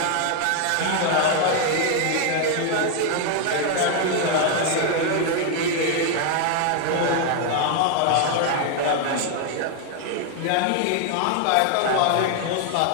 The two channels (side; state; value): both; different; correlation 0.01